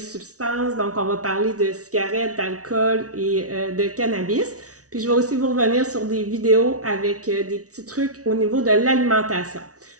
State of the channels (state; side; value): late; left; 0.67 ms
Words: Donc, on va parler de cigarettes, d'alcool et de cannabis. Puis, je vais aussi vous revenir sur des vidéos avec des petits trucs au niveau de l'alimentation.